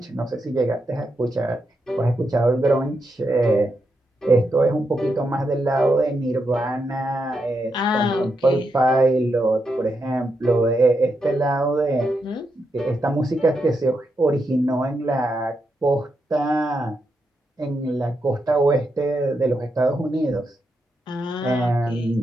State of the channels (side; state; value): both; normal; correlation 0.83